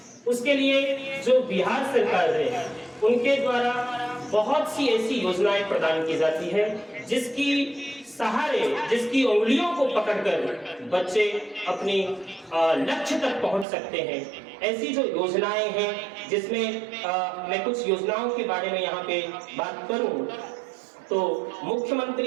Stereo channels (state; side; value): drops out; left; at 13.7 s